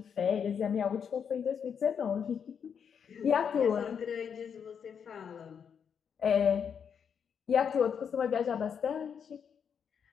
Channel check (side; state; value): right; quieter; 7.3 dB